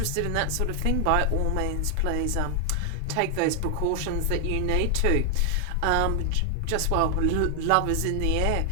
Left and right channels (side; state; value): both; different; correlation 0.00